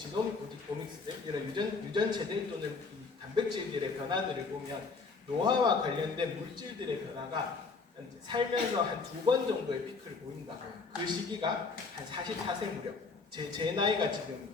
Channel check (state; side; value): quieter; right; 4.4 dB